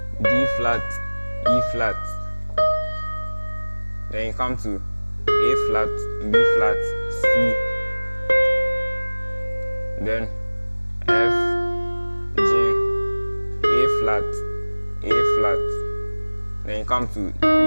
D flat, E flat. Then you come to A flat, B flat, C. Then F, G, A flat, A flat. Then you come to E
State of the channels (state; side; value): inverted; both; correlation -1.00